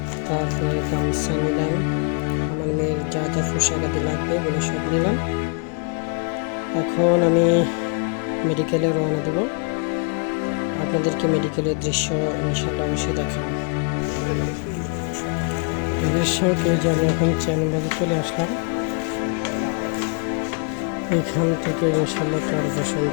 তারপরে গামছা নিলাম, আমার মেয়ের যা যা পোশাক আদি লাগবে ওগুলো সব নিলাম। এখন আমি মেডিকেলে রওনা দেব। আপনাদেরকে মেডিকেলের দৃশ্য ইনশাল্লাহ অবশ্যই দেখাবো। দর্শক, এই যে আমি এখন চেয়ারবাজারে চলে আসলাম। এখান থেকে ইনশাল্লাহ চরপেশন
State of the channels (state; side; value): quieter; right; 39.4 dB